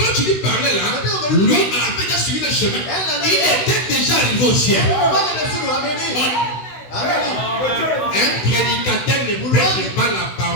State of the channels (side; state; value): right; late; 16 ms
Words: tu lui parlais là, lui avait déjà suivi le chemin. Il était déjà arrivé au ciel. Un prédicateur ne prêche pas la